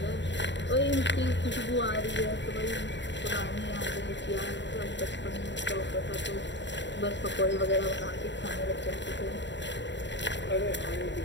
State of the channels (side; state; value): right; late; 0.52 ms